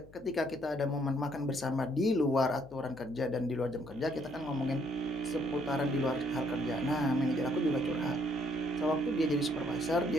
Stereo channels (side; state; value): left; noise; hum, 23 dB below the sound